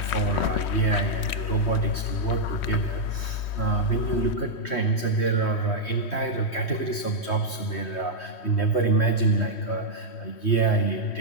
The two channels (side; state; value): right; late; 3.1 ms